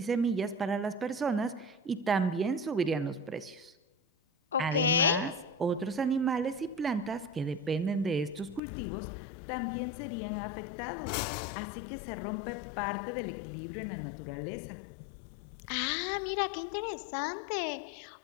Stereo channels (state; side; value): drops out; right; at 8.6 s